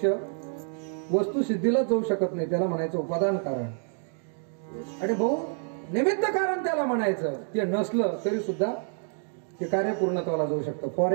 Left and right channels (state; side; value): silent; left; 55 dB below the other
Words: वस्तू सिद्धीला जाऊ शकत नाही. त्याला म्हणायचं उपादान कारण. आणि भाऊ निमित्त कारण त्याला म्हणायचं. ते नसलं तरी सुद्धा ते कार्य पूर्णत्वाला जाऊ शकतं. फॉर